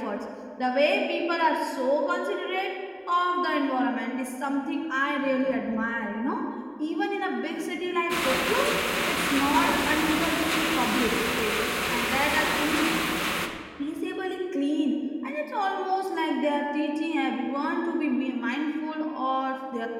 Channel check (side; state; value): both; identical; correlation 1.00